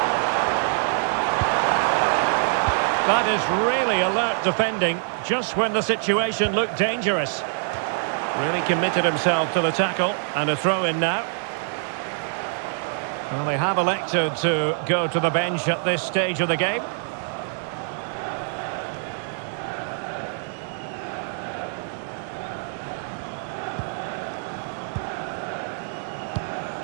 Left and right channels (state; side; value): silent; left; 62 dB below the other